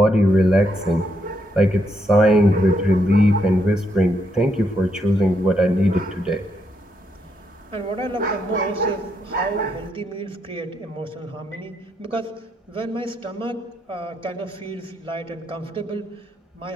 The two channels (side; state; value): both; normal; correlation 0.78